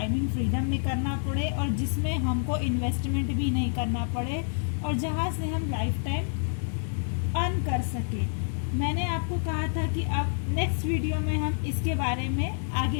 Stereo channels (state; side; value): silent; right; 59 dB below the other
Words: फ्रीडम में करना पड़े और जिसमें हमको इन्वेस्टमेंट भी नहीं करना पड़े और जहाँ से हम लाइफ टाइम अर्न कर सकें। मैंने आपको कहा था कि अब नेक्स्ट वीडियो में हम इसके बारे में